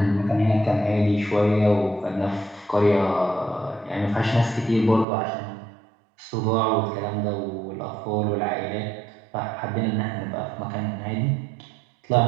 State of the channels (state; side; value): drops out; left; at 5.1 s